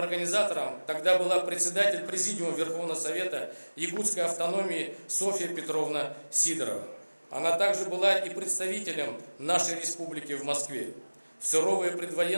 тогда была председатель Президиума Верховного Совета Якутской автономии Софья Петровна Сидорова. Она также была и представителем нашей республики в Москве. В суровые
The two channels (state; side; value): inverted; both; correlation -1.00